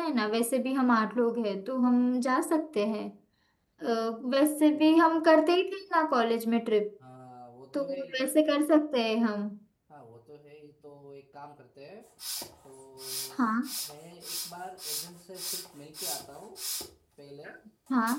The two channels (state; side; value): identical; both; correlation 1.00